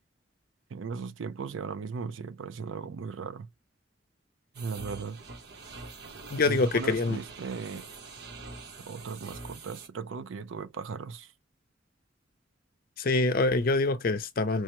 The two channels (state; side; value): normal; both; correlation 0.24